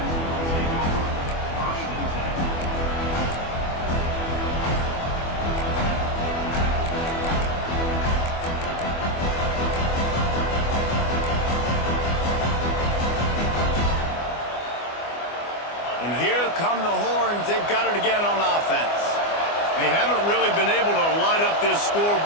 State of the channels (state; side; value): late; right; 24 ms